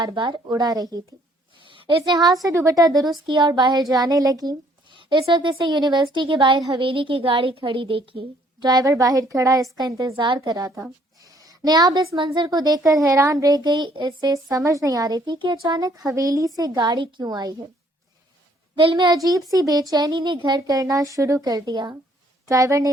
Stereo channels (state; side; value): normal; both; correlation 0.63